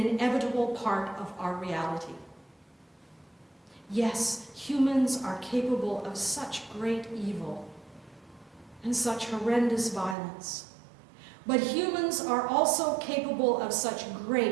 part of our reality. Yes, humans are capable of such great evil and such horrendous violence. But humans are also capable of such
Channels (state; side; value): drops out; left; at 10.2 s